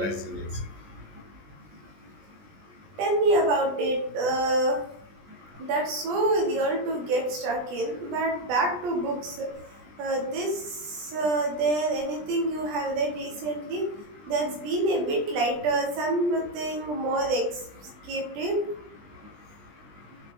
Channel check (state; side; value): late; left; 20 ms